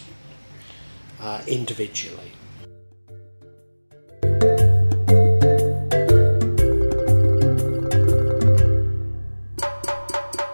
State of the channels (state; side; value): inverted; both; correlation -1.00